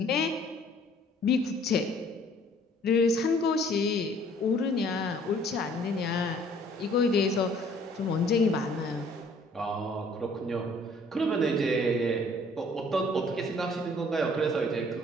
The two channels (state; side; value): normal; both; correlation 0.57